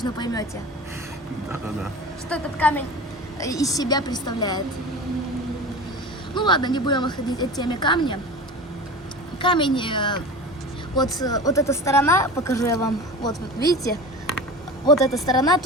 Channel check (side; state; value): both; normal; correlation 0.33